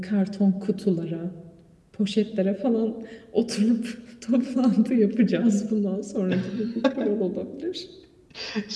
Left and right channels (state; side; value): identical; both; correlation 1.00